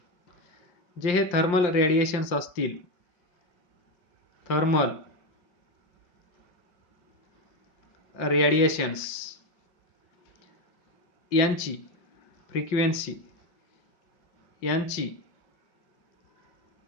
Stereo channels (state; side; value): late; right; 5.7 ms